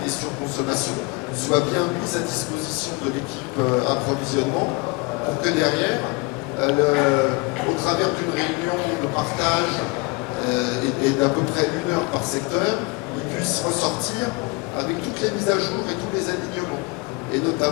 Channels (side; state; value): right; quieter; 27.1 dB